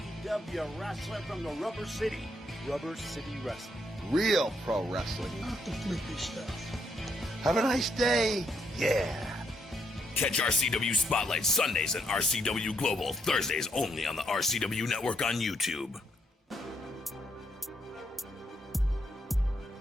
Wrestling from the Rubber City. Rubber City Wrestling. Real pro wrestling. Not the flippy stuff. Have a nice day. Yeah. Catch RCW Spotlight Sundays and RCW Global Thursdays only on the RCW Network on YouTube.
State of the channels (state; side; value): normal; both; correlation 0.74